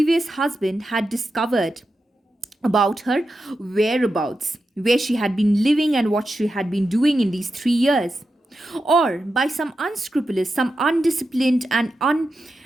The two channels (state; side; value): normal; both; correlation 0.89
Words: husband, had discovered about her whereabouts, where she had been living and what she had been doing in these 3 years. Or by some unscrupulous, some undisciplined and